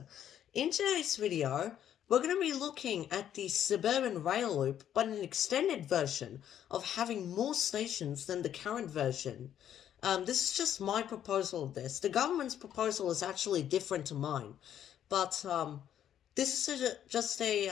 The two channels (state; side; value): quieter; right; 10.3 dB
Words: In today's video, we're going to be looking at the Suburban Rail Loop, but an extended version of having more stations than the current version. This is just my proposal of this. The government's proposal is actually different to mine, but this is just